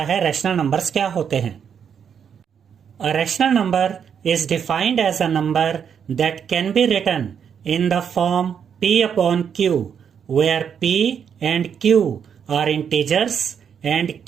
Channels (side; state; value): left; quieter; 7.6 dB